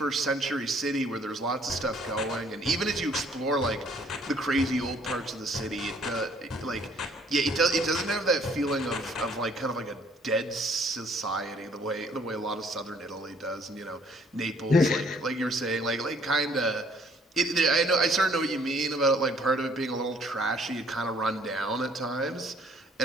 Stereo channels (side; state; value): both; normal; correlation 0.61